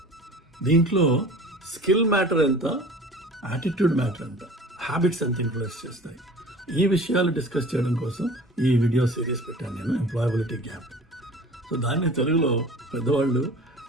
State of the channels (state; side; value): normal; both; correlation 0.42